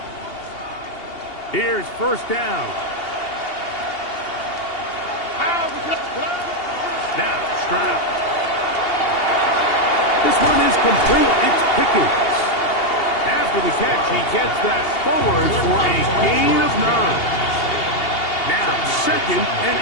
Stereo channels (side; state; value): right; late; 2.8 ms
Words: Here's first down. Now, Stroud. This one is complete. It's Pickens. After the catch, he gets that forward for a gain of 9. Now, second and